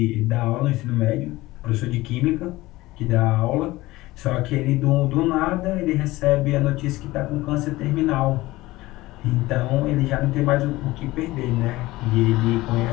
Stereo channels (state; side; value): quieter; right; 18.7 dB